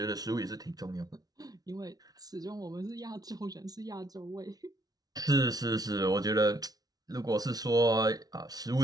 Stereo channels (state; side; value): late; left; 0.19 ms